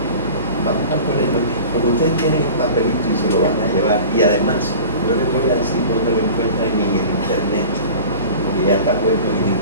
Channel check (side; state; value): both; inverted; correlation -0.39